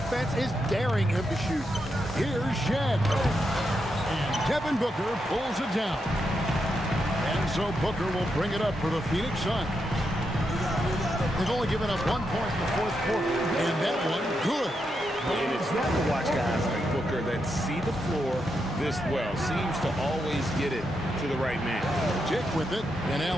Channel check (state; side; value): normal; both; correlation 0.83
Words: is daring him to shoot. Here's Shed. And Devin Booker pulls it down. And so Booker will bring it up for the Phoenix Suns. They've only given up 1 point in the fourth quarter, and that one good. And it's fun to watch guys like Booker that see the floor this well. Seems to always get it to the right man. Dick with it, and